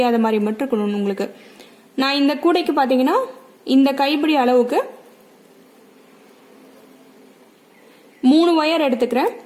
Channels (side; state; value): both; identical; correlation 1.00